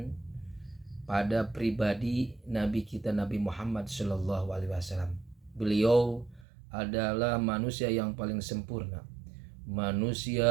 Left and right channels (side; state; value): left; drops out; at 6.5 s